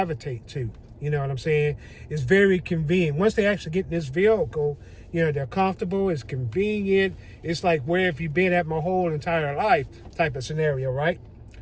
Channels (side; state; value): both; identical; correlation 1.00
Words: to. You know what I'm saying? It's very convenient. Once they actually get in this vehicle, they're comfortable, it's convenient. It's like, where have you been at my whole entire life type of scenario, right?